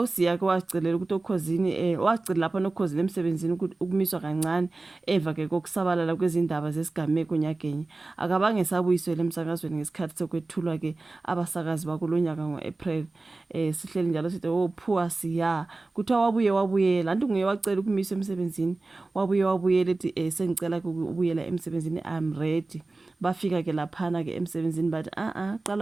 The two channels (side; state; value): left; quieter; 3.3 dB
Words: uSiya ke wacicelela ukuthi okhosini wacicela lapha nokhosini emsebenzini ukumiswa kancane eva ke kokusabalala kwezindaba zesigameko nyakenye akabange sabuyiswele emsakazweni ngesikhathi sokwethulwa ke abasakazi bakulonyaka ngoApril sihleli njalo sithi poor Siya kuthiwa wabuyela anti nguye wacela ukumiswa emsebenzini wabuyela ethi sengicela ukubuyela emsebenzini I'm ready. Bafika ke laphana ke emsebenzini bathi